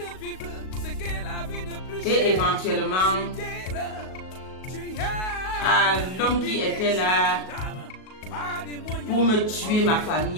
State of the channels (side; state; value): right; late; 37 ms